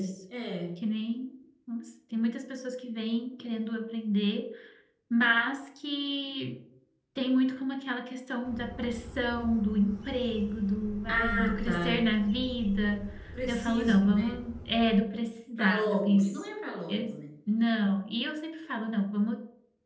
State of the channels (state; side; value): identical; both; correlation 1.00